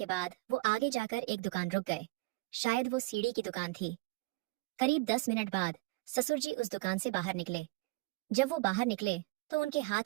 बाद वो आगे जाकर एक दुकान रुक गए। शायद वो सीढ़ी की दुकान थी। करीब 10 मिनट बाद ससुर जी उस दुकान से बाहर निकले। जब वो बाहर निकले तो उनके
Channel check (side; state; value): left; quieter; 22.6 dB